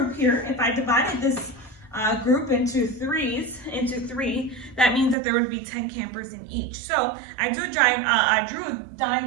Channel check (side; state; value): left; drops out; at 5.2 s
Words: here, if I divided this group into 3, that means that there would be 10 campers in each. So I drew a